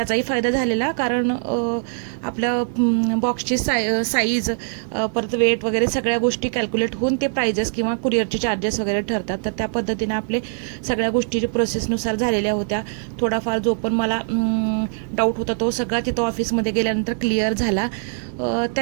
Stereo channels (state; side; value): silent; left; 60 dB below the other